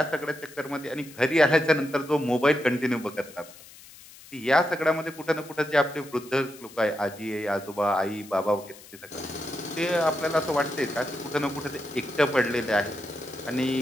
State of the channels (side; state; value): left; noise; hiss, 20 dB below the sound